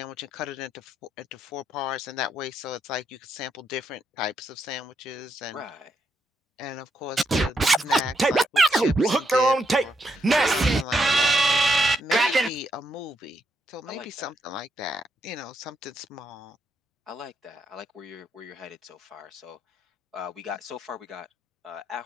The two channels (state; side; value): normal; both; correlation 0.78